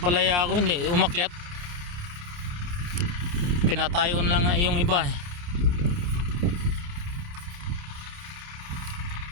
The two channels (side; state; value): left; late; 28 ms